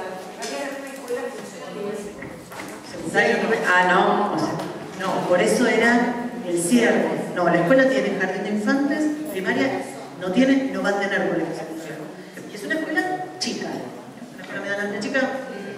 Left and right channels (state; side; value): identical; both; correlation 1.00